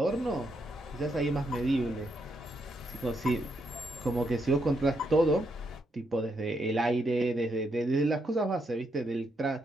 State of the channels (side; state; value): both; normal; correlation 0.78